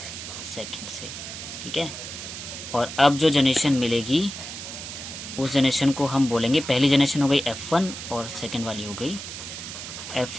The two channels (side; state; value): right; noise; hiss, 9 dB below the sound